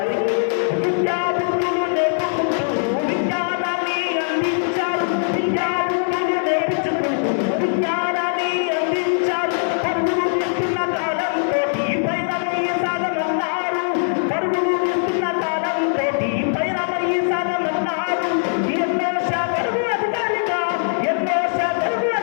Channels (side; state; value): right; silent; digital silence